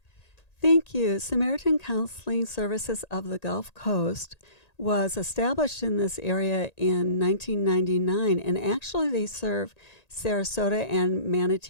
Thank you. Samaritan Counseling Services of the Gulf Coast was established in this area in 1999, and actually they serve Sarasota and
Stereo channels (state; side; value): late; right; 1.8 ms